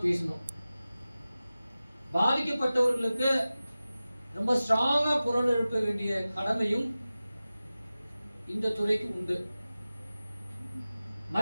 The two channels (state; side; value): inverted; both; correlation -0.96